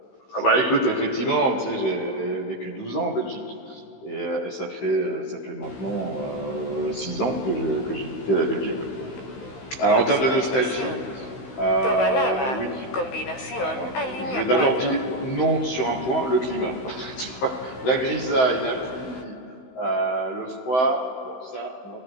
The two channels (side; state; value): right; late; 16 ms